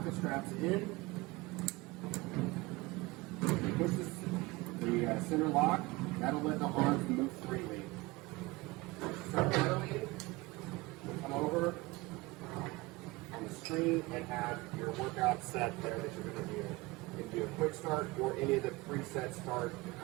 the straps in, push the center lock, that'll let the arms move freely. Start pedaling, come over on the screen and have your workout set there that you're going to do. You can do a quick start or any of the preset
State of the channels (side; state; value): left; quieter; 22.2 dB